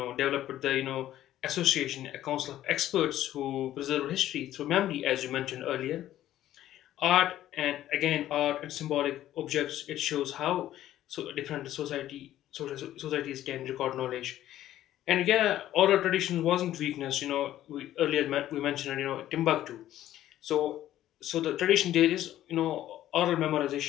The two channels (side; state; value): right; quieter; 13.0 dB